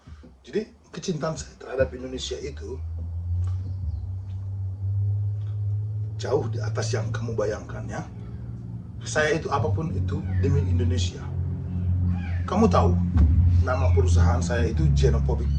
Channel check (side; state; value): both; identical; correlation 1.00